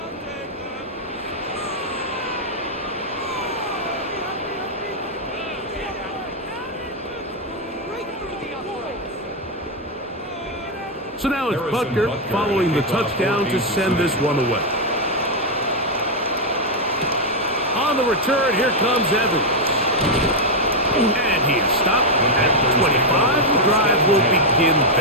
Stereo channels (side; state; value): both; normal; correlation 0.01